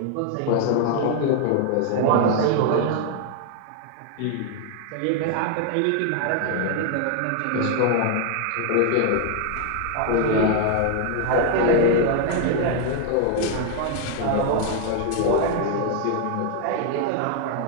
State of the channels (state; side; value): different; both; correlation 0.00